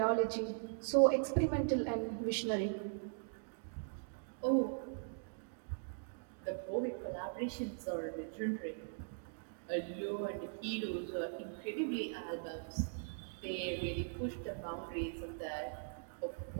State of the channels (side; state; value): left; silent; digital silence